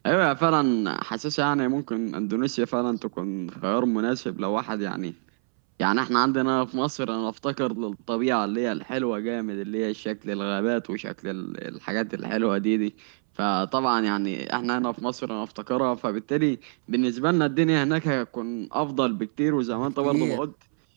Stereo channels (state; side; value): silent; left; 61 dB below the other